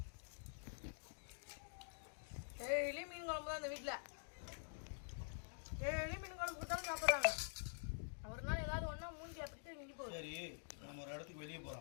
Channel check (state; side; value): silent; right; digital silence